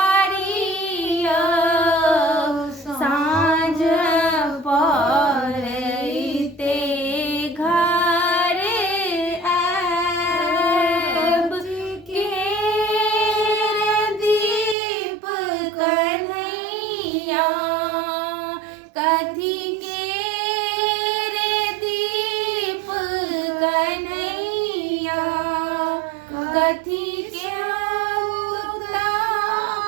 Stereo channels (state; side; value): drops out; left; at 14.8 s